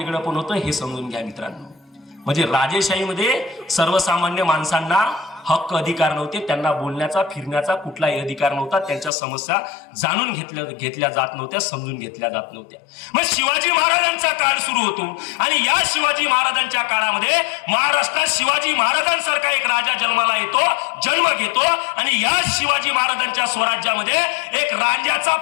पण होतं हे समजून घ्या मित्रांनो. म्हणजे राजेशाहीमध्ये सर्वसामान्य माणसांना हक्क अधिकार नव्हते, त्यांना बोलण्याचा फिरण्याचा कुठलाही अधिकार नव्हता, त्यांच्या समस्या जाणून घेतल्या जात नव्हत्या, समजून घेतल्या जात नव्हत्या. मग शिवाजी महाराजांचा काळ सुरू होतो आणि या शिवाजी महाराजांच्या काळामध्ये महाराष्ट्रात शिवाजी महाराजांसारखा एक राजा जन्माला येतो, जन्म घेतो आणि या शिवाजी महाराजांच्या स्वराज्यामध्ये एक रांझ्याचा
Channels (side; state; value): right; drops out; at 9.1 s